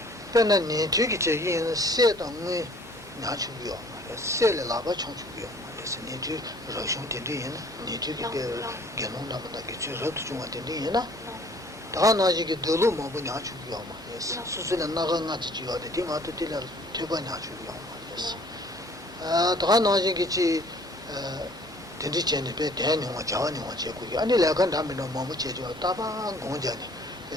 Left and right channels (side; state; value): both; normal; correlation 0.55